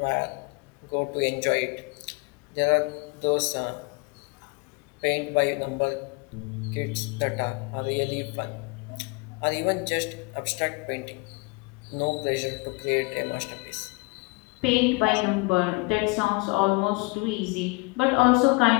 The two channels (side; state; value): right; quieter; 28.4 dB